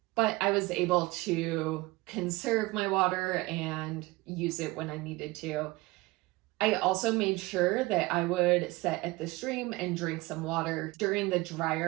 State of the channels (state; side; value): quieter; left; 21.5 dB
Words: But I was able to conserve my water and use it when I needed to. I also made sure that I would sit at the stream and drink some water during the